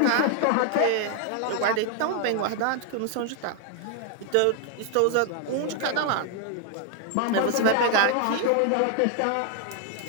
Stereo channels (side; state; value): both; different; correlation 0.01